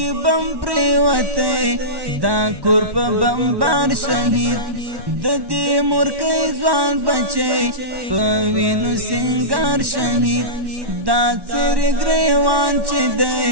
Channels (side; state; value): left; late; 1.1 ms